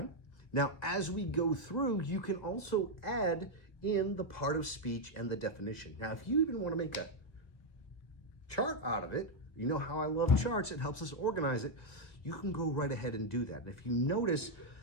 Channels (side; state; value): right; late; 2.0 ms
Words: Now, as we go through, you can also add in the part of speech and the definition. Now, if you even want to make a chart out of it, you know how I love charts. It helps us organize it. You can go right ahead and do that. And if you notice,